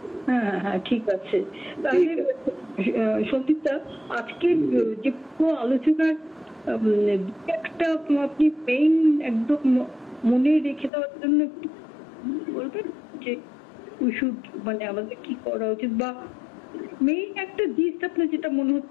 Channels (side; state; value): right; drops out; at 10.9 s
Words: হ্যাঁ ঠিক আছে। তাহলে সন্দীপদা, আজকে যে পুরো আলোচনার একটা আপনি মেইন একদম মনে রেখে দেওয়ার জন্য একটু বলবেন যে মানে আমাদের কি করা উচিত, বা মেইন একটা জিনিস আপনার যেটা মনে